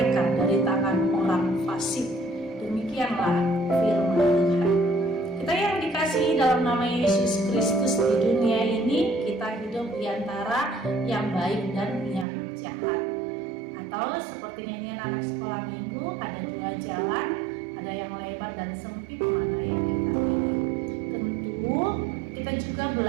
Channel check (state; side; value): drops out; left; at 12.2 s